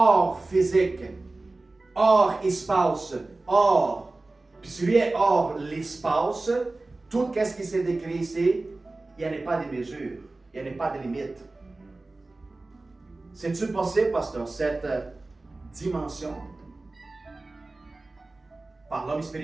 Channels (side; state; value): left; quieter; 3.2 dB